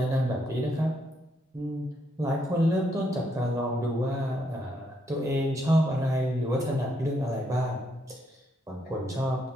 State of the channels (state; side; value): normal; both; correlation 0.76